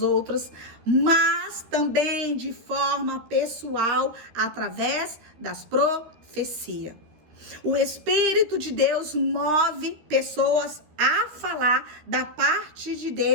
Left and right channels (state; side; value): late; left; 13 ms